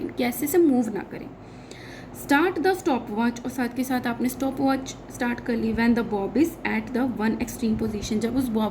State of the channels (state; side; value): identical; both; correlation 1.00